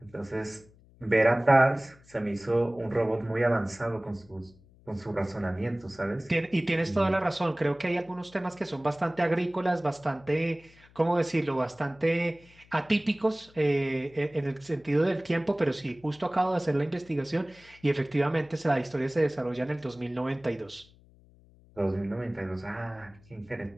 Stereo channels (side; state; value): left; noise; hum, 27 dB below the sound